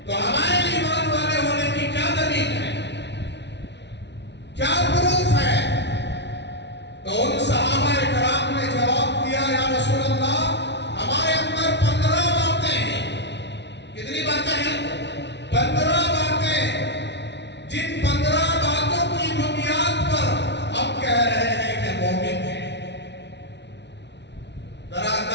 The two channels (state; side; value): late; right; 0.50 ms